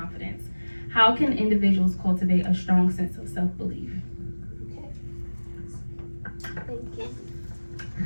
How can individuals cultivate a strong sense of self-belief? Thank you.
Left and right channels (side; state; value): both; inverted; correlation -1.00